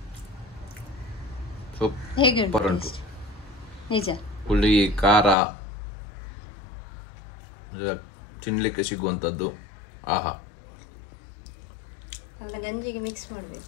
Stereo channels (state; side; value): drops out; right; at 5.4 s